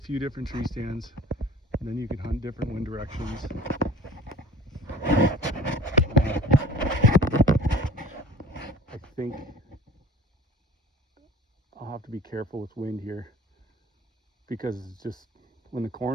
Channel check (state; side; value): normal; both; correlation 0.44